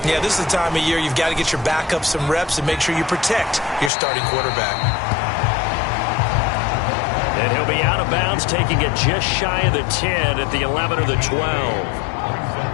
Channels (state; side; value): drops out; right; at 3.9 s